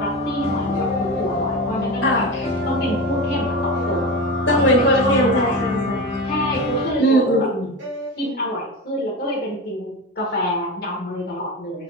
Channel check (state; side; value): normal; both; correlation 0.24